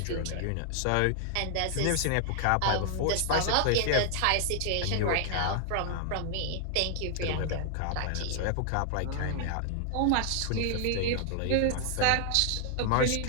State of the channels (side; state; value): both; different; correlation 0.00